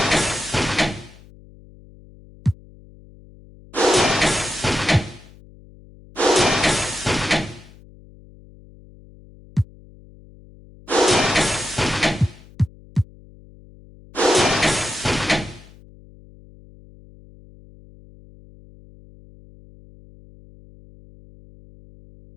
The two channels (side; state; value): left; noise; hum, 23 dB below the sound